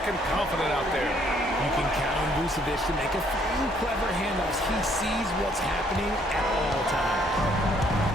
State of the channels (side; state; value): both; normal; correlation 0.66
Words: confident out there. You can count on Vucevic to make a few clever handoffs. He sees what's happening at all times.